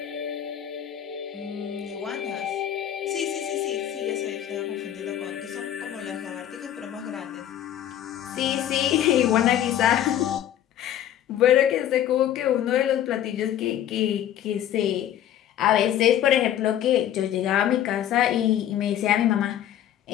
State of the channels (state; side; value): quieter; right; 11.2 dB